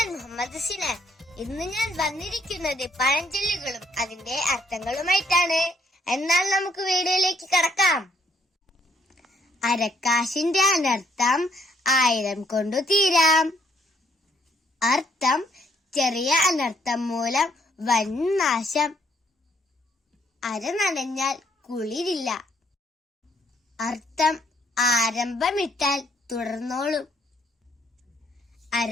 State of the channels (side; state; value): both; normal; correlation 0.68